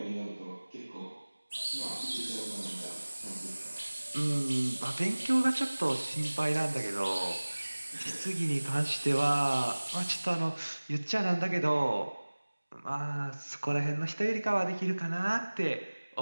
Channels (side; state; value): both; inverted; correlation -1.00